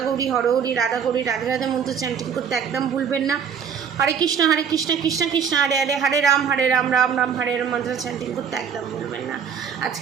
গৌরী হরহরি, রাধা গৌরী রাধে রাধে মন্ত্র চ্যান্টিং করতে একদম ভুলবেন না। হরে কৃষ্ণ কৃষ্ণ কৃষ্ণ হরে হরে, হরে রাম রাম রাম হরে রাম মন্ত্র চ্যান্টিং করতে একদম ভুলবেন না।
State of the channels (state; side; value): quieter; left; 7.3 dB